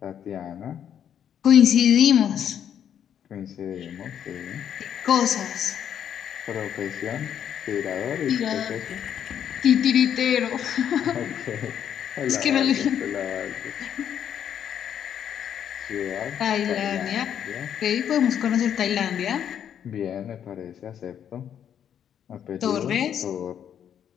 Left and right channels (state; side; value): quieter; right; 9.2 dB